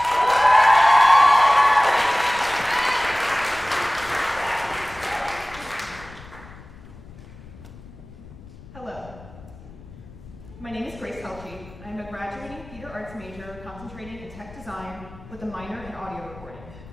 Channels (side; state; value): left; noise; rumble, 19 dB below the sound